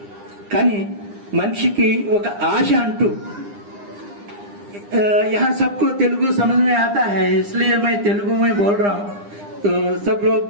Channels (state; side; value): late; left; 9.9 ms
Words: కానీ మనిషికి ఒక ఆశ అంటూ यहाँ सबको तेलुगु समझ में आता है, इसलिए मैं तेलुगु में बोल रहा हूँ. तो सब लोग